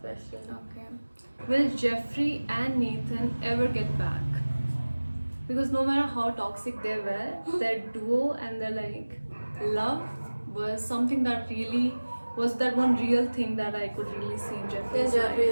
question. Okay. Will Jeffrey and Nathan ever get back? Because no matter how toxic they were, their duo and their love was something that really was that one real thing that I could really see in Jeffrey's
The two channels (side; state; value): both; inverted; correlation -1.00